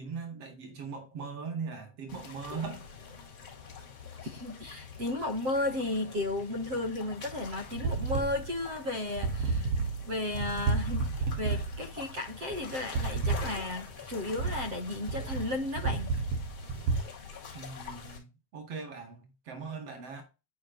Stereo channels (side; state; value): left; late; 7.6 ms